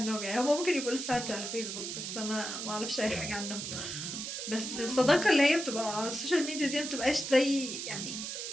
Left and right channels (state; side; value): noise; right; hiss, 5 dB below the sound